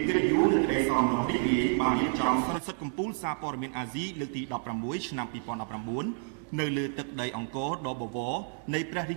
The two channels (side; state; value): left; silent; 58 dB below the other